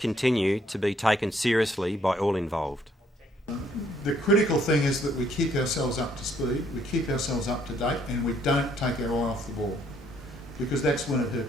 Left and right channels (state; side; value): normal; both; correlation 0.67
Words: to be taken seriously by all involved. The critical thing is that we keep ourselves up to speed, we keep ourselves up to date, and we don't take our eye off the ball, because that's when it